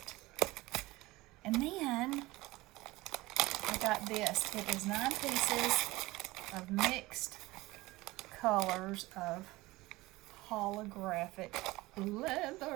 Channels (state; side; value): quieter; left; 20.0 dB